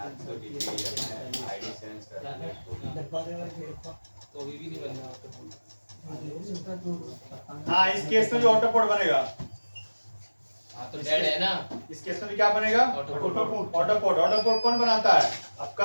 आईडी सेंस कर तो अभी भी नहीं बन रहा हाँ, इस केस में भी ऑटो पोर्ट बनेगा, हाँ तो डेड है ना, इस केस में भी क्या बनेगा, ऑटो ऑटो पोर्ट कौन बनाता है,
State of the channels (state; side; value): inverted; both; correlation -1.00